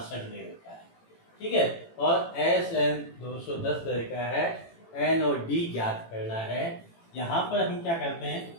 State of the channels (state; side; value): late; right; 18 ms